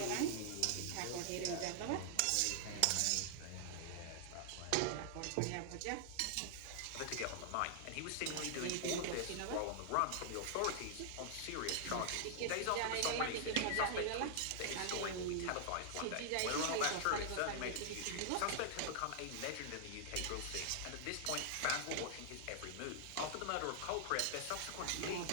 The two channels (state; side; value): different; both; correlation -0.01